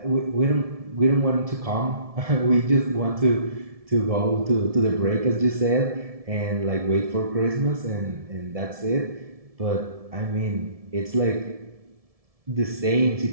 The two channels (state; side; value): late; left; 1.7 ms